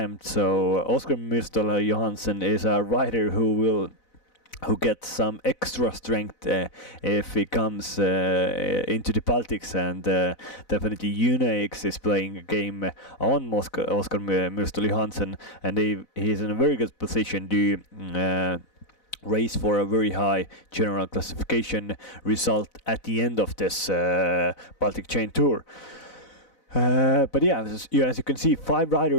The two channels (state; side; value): late; right; 4.0 ms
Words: So Oskar Myrstel Johansson is a rider who gets some extra strength if he comes into the Baltics, and definitely UNAX is playing a game on Oskar Myrstel Johansson, and he is in a very good position to race for a very high general classification result at the end of this Baltic Chain Tour. But yeah, as you can see, 5